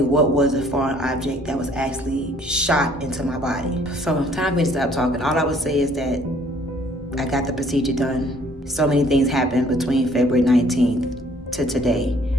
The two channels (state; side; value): normal; both; correlation 0.60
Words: what was a foreign object that was actually shot into my body. So time for me to stop talking. All I would say is that I got the procedure done. So many things happened between February 19th to today.